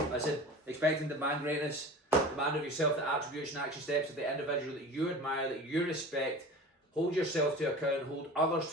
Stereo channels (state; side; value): normal; both; correlation 0.37